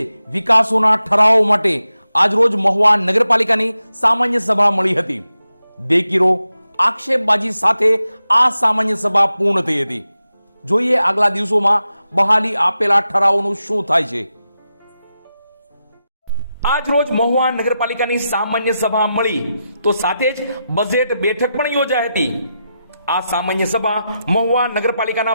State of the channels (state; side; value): inverted; both; correlation -0.89